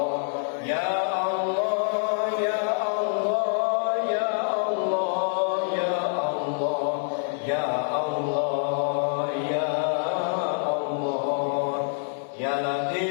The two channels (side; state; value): right; silent; 59 dB below the other